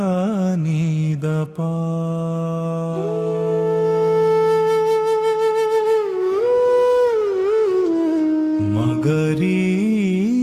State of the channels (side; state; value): both; identical; correlation 1.00